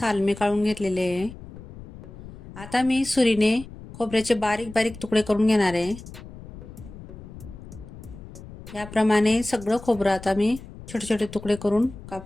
मी काढून घेतलेले आहे. आता मी सुरीने खोबऱ्याचे बारीक बारीक तुकडे करून घेणार आहे. याप्रमाणे सगळं खोबरं आता मी छोटे छोटे तुकडे करून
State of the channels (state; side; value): noise; left; rumble, 15 dB below the sound